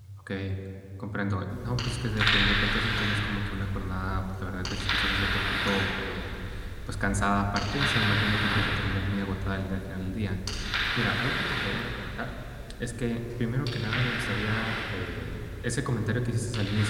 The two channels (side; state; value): both; identical; correlation 1.00